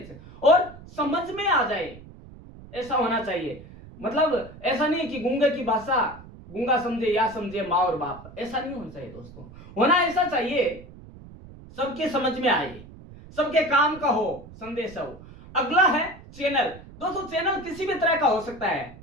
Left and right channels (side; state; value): right; noise; rumble, 18 dB below the sound